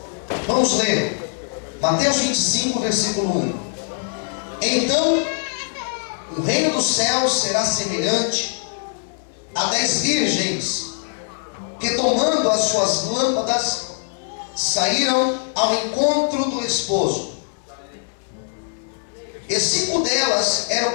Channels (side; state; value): right; silent; digital silence